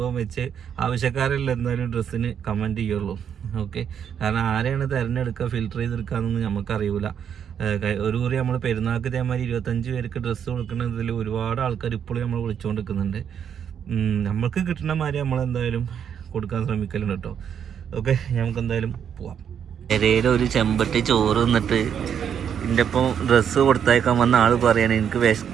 വെച്ച് ആവശ്യക്കാരെല്ലാം എന്തായാലും ഡ്രസ്സിന് കമൻറ്റ് ചെയ്യുള്ളൂ. ഓക്കെ, കാരണം ആരെയാണ് തിരഞ്ഞെടുക്കുക ഫിൽറ്റർ ചെയ്തെടുക്കുക എന്നൊന്നും നമുക്കറിയില്ല. ഒരു കുറി നമ്മൾ പെരുന്നാൾക്ക് ഇതേമാതിരി 25 പേർക്ക് ഡ്രസ്സ് കൊടുക്കുന്നതിൽ ഒരുപാട് ആൾക്കാർ ഇപ്പോഴും നമ്മൾ വിളിച്ചുകൊണ്ടിരിക്കുന്നുണ്ട്. നമ്മൾക്ക് കിട്ടുന്ന മാതിരി നമ്മളെന്തായാലും കൊടുക്കാൻ ശ്രമിക്കലുണ്ട് കേട്ടോ. ഓക്കെ, നമുക്ക് എന്തായാലും പോവാം. പെരയിൽ ഒരു ചെമ്പട്ടി ചോറ് തിന്നിട്ട് എൻ്റെ ഒപ്പം ഡ്രസ്സ് കൊടുത്തയക്കാൻ വന്ന ആൾ പറയണേ എനിക്ക്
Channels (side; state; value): left; quieter; 8.3 dB